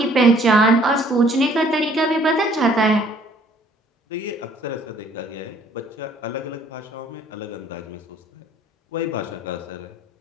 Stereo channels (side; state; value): both; normal; correlation 0.59